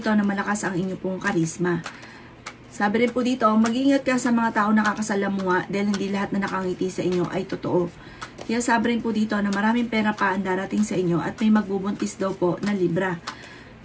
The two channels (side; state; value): both; identical; correlation 1.00